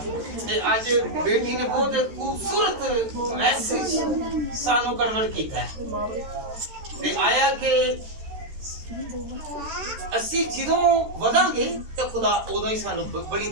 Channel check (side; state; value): left; late; 13 ms